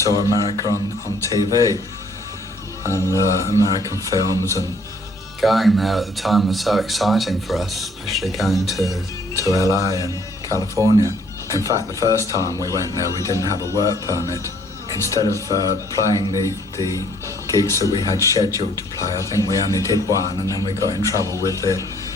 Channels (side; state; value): both; normal; correlation 0.62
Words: saw America on TV and American films, and going there at the time was so exciting for us, especially going to LA and California. In fact, the first time we went there, we didn't have a work permit. Instead of playing the gigs that we had scheduled to play, I think we only did one, and then we got in trouble with the